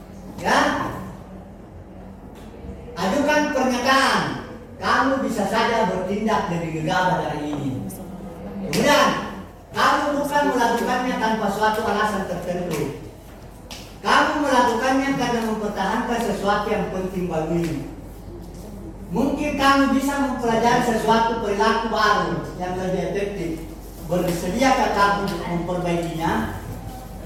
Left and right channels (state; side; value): identical; both; correlation 1.00